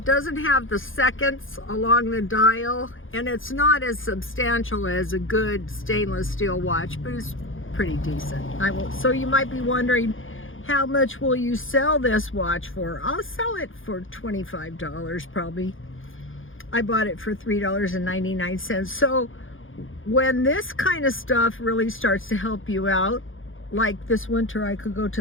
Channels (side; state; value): right; late; 0.58 ms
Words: doesn't have the seconds along the dial, and it's not as substantial as a good stainless steel watch, but it's pretty decent. So you might be wondering, how much will you sell this watch for? I'll sell it for $25 probably. I bought it for $3.99. So when this kind of stuff really starts to help you out, like this winter I could go